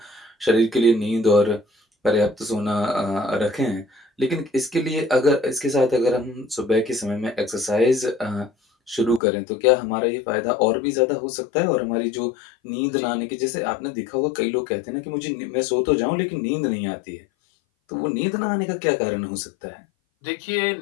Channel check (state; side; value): drops out; right; at 9.2 s